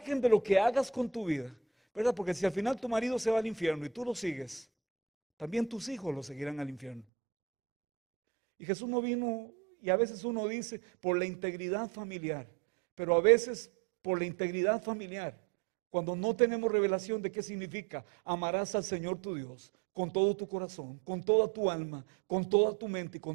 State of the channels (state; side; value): drops out; left; at 7.1 s